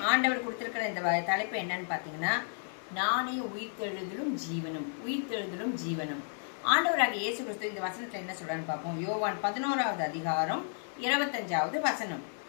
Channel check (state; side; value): silent; right; 56 dB below the other